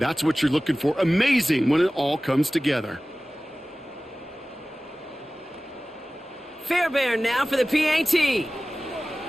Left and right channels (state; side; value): normal; both; correlation 0.97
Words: what you're looking for. Amazing when it all comes together. Fairbairn now for the PAT.